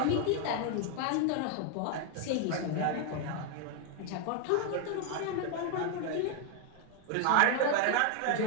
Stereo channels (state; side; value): different; both; correlation 0.01